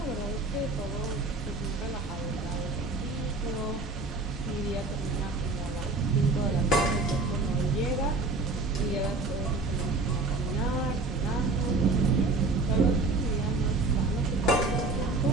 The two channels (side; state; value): left; quieter; 3.4 dB